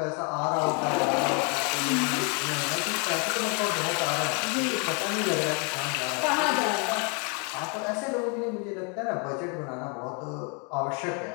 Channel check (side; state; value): right; quieter; 36.1 dB